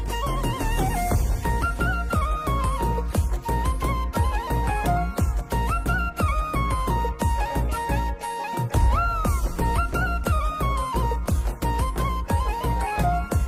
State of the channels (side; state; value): both; identical; correlation 1.00